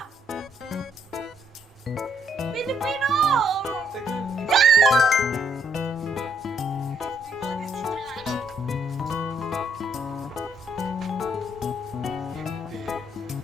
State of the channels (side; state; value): both; normal; correlation 0.70